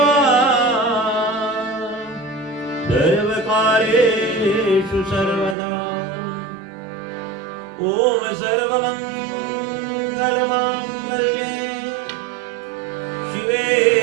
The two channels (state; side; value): drops out; left; at 5.6 s